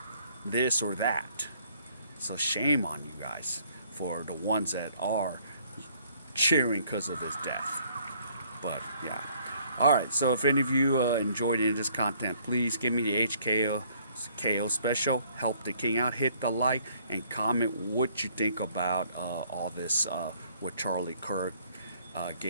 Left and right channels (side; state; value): both; inverted; correlation -0.63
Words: this or that. So shame on you guys for the ones that are cheering because of his death. But yeah. All right. So if any of you enjoyed any of this content, please give me the HKO special. Help the king out. Hit the like and comment what you think about all this with Charlie Kirk